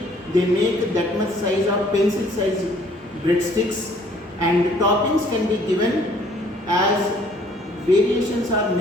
they make that much size of pencil size breadsticks, and toppings can be given as variations are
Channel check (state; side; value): normal; both; correlation 0.59